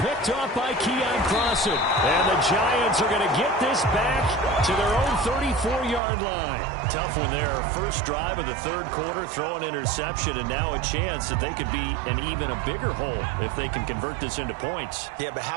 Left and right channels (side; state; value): left; drops out; at 6.0 s